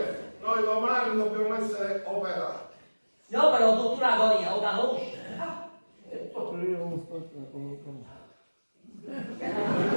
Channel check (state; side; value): inverted; both; correlation -1.00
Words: noi domani dobbiamo essere operati. No, però tutta l'agonia, lo conosci?